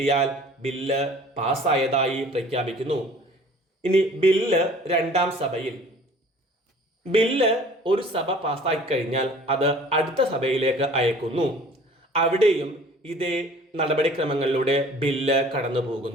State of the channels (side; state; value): both; normal; correlation 0.49